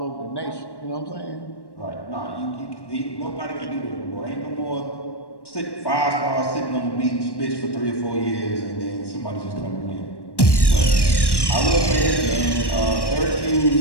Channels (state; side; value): late; right; 1.1 ms